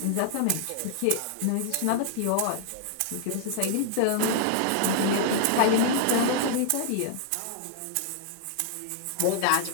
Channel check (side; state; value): both; different; correlation -0.01